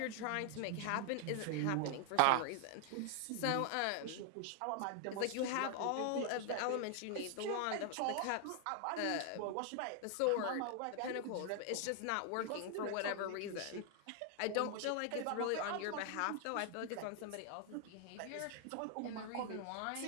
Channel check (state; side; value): different; both; correlation 0.00